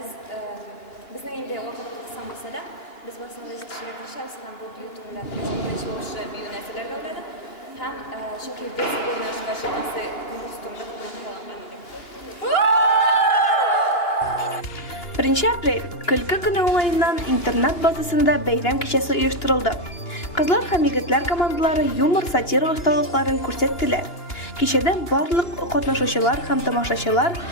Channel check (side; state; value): right; late; 2.9 ms